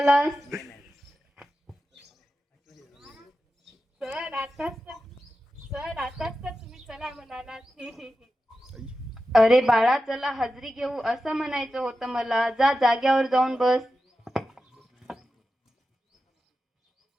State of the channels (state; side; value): normal; both; correlation 0.91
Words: सर आताच तर तुम्ही चला म्हणालात. अरे बाळा चला हजरी घेऊ असं म्हणायचं होतं मला. जा जाग्यावर जाऊन बस.